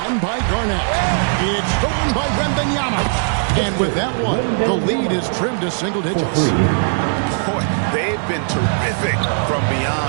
by Garnett. It's stolen by Wembanyama. And with that one, the lead is trimmed to single digits. Boy, they've been terrific from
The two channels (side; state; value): left; silent; 67 dB below the other